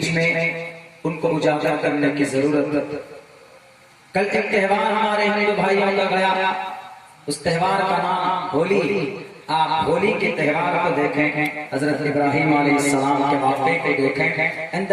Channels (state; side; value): identical; both; correlation 1.00